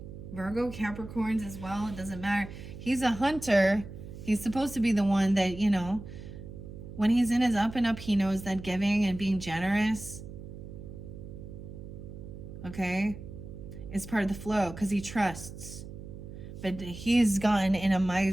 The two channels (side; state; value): right; noise; hum, 12 dB below the sound